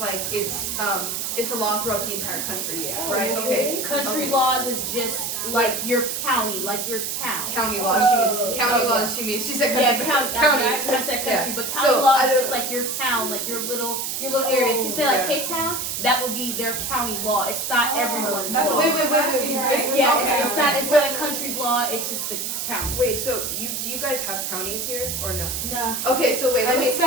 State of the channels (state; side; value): noise; right; hiss, 3 dB below the sound